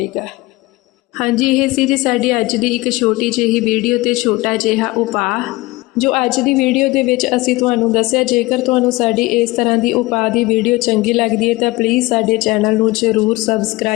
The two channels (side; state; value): right; quieter; 21.1 dB